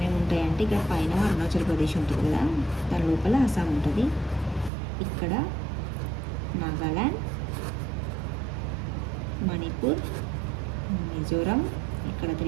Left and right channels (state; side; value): drops out; left; at 4.7 s